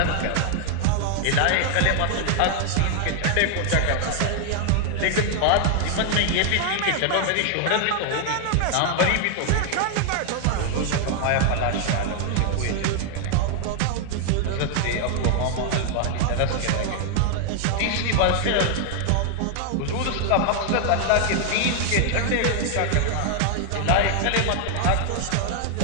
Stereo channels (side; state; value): both; different; correlation 0.00